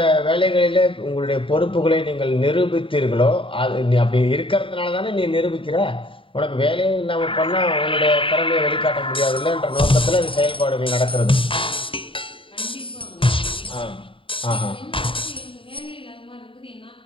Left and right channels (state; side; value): late; right; 0.25 ms